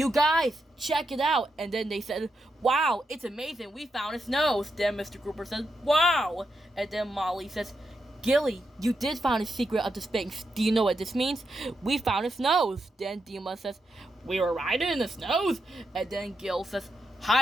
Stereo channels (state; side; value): normal; both; correlation 0.84